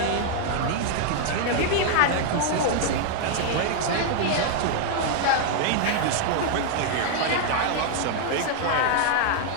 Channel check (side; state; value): both; different; correlation 0.00